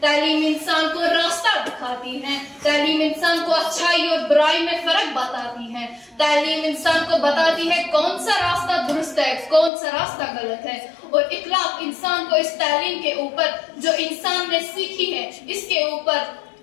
तालीम इंसान को रास्ता दिखाती है, तालीम इंसान को अच्छाई और बुराई में फर्क बताती है, तालीम इंसान को बताती है कौन सा रास्ता दुरुस्त है, कौन सा रास्ता गलत है। और इखलाक इंसान को इस तालीम के ऊपर जो इंसान ने सीखी है इसके ऊपर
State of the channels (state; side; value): drops out; right; at 9.7 s